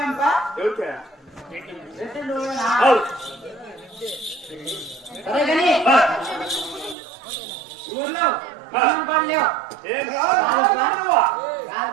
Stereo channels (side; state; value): left; drops out; at 7.0 s